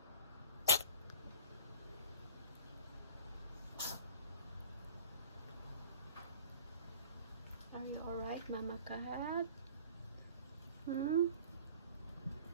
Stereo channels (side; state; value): both; inverted; correlation -0.44